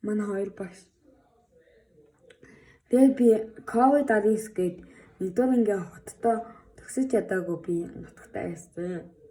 Манай хоёр багш. Тэгээд би ковид 19 гээд нэгдүгээр ингээ хоттой төгсөж чадаагүй би нутагтаа байсан.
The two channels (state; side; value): identical; both; correlation 1.00